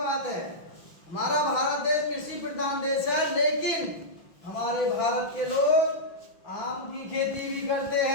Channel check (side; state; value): right; late; 6.0 ms